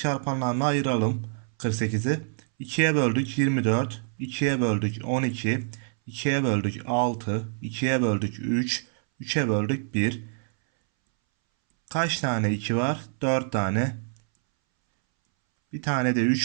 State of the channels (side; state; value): left; silent; 61 dB below the other